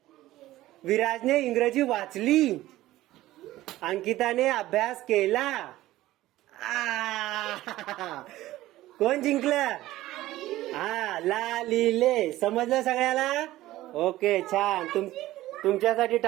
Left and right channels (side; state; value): left; quieter; 16.0 dB